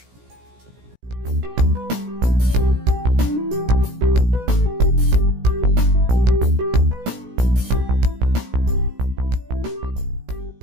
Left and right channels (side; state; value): left; late; 16 ms